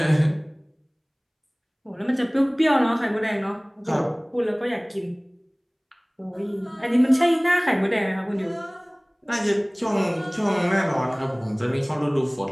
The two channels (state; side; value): identical; both; correlation 1.00